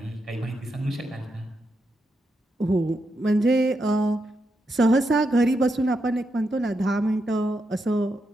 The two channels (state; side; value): normal; both; correlation 0.83